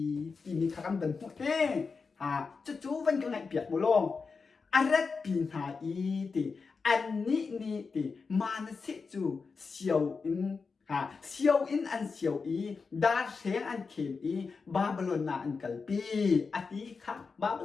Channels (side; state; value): right; quieter; 4.8 dB